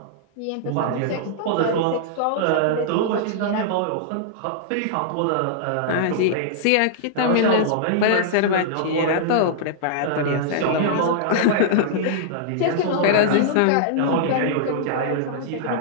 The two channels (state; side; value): different; both; correlation -0.02